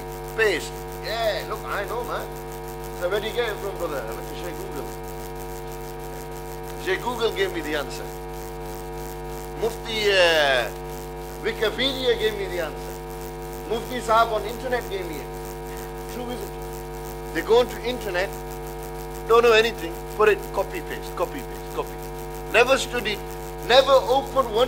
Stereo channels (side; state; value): both; identical; correlation 1.00